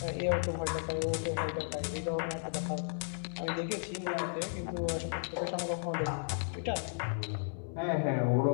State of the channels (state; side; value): silent; right; digital silence